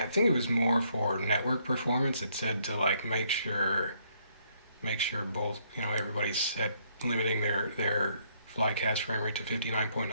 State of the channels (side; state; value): both; inverted; correlation -0.70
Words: think it was more for network performance. It said to like make sure both, you know, everybody's set limiting their Flycast frame rate to